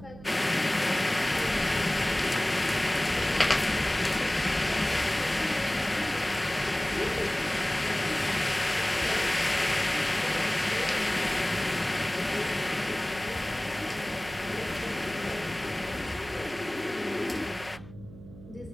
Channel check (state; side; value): noise; right; hum, 17 dB below the sound